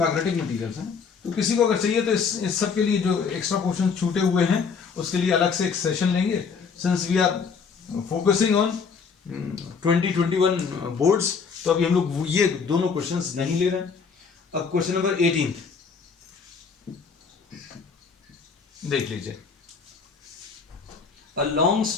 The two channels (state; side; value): quieter; right; 5.6 dB